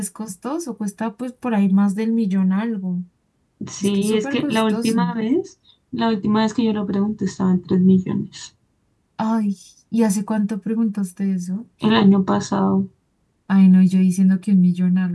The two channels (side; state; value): both; identical; correlation 1.00